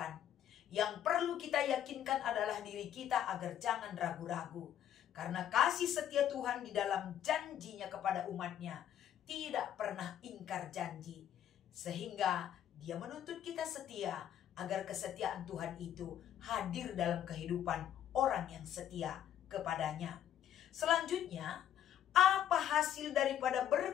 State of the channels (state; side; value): quieter; right; 10.5 dB